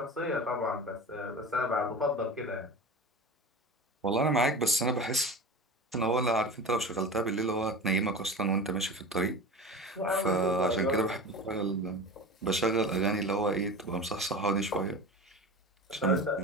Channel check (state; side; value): normal; both; correlation 0.31